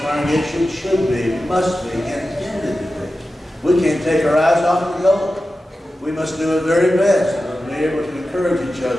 should be, must be, intended to be. We can't take our eyes off the goal. We must do our very best to be able to encourage each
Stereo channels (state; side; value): normal; both; correlation 0.93